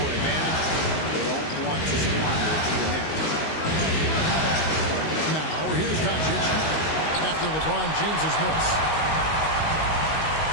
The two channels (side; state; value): right; late; 19 ms